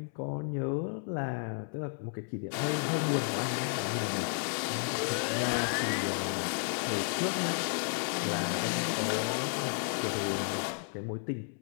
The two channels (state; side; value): silent; right; 56 dB below the other